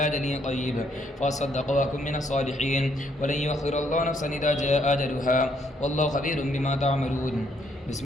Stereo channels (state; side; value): normal; both; correlation 0.70